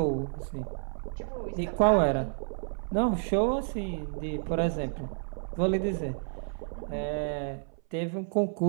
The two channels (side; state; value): left; silent; 57 dB below the other